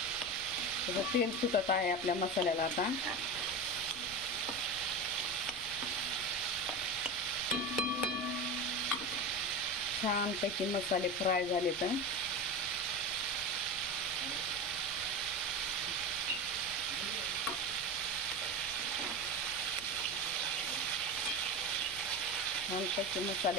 त्याचं तेल सुटत आहे आपल्या मसाल्याला. आता छानपैकी मसाले फ्राय झाले तर छानपैकी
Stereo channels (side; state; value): left; noise; rumble, 18 dB below the sound